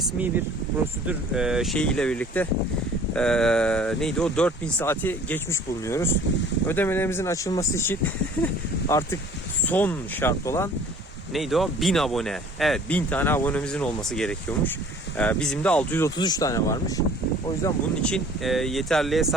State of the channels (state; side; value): normal; both; correlation 0.50